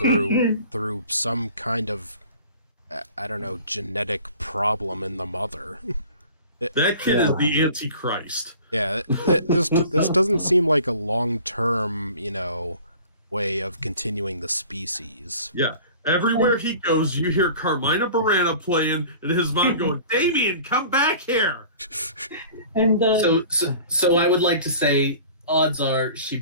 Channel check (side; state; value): both; inverted; correlation -0.45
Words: some kind of, I don't know, genetic problem in the mother. That kid is the Antichrist. Yeah, this doesn't seem like a long-term, way of continuing the species. Yeah. Everywhere he goes, you hear Carmina Burana playing, and his mom going, "Damien, come back here." And So I would like to say, odds are